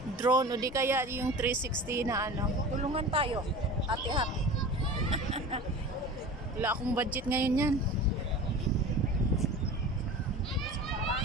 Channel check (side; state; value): both; normal; correlation 0.36